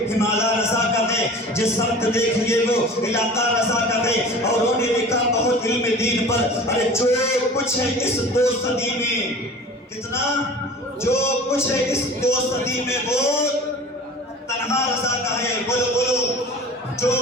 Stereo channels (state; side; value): normal; both; correlation 0.41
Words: ہمالا رضا کا ہے، جس سمت دیکھئے وہ علاقہ رضا کا ہے. اور انہوں نے لکھا بہت علم دین پر ارے جو کچھ ہے اس 2 صدی میں، کتنا جو کچھ ہے اس 2 صدی میں وہ تنہا رضا کا ہے. بولو بولو جو